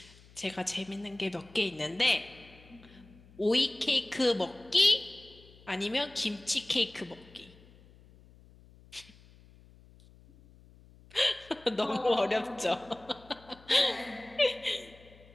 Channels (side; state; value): left; noise; hum, 24 dB below the sound